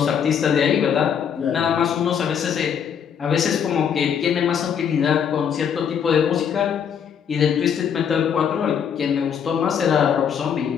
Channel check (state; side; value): quieter; right; 7.8 dB